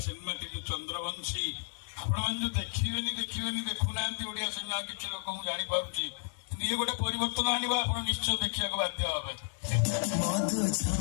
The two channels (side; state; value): right; silent; digital silence